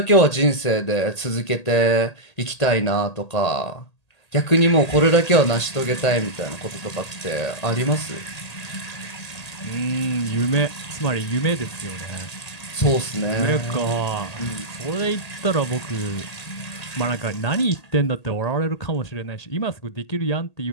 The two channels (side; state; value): right; late; 1.8 ms